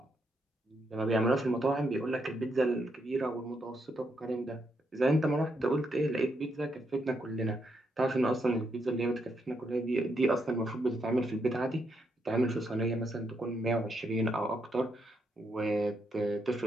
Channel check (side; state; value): both; normal; correlation 0.79